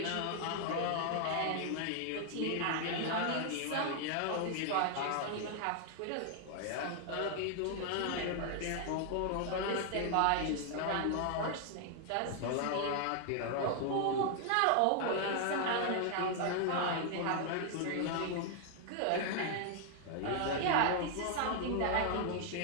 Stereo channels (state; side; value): different; both; correlation 0.00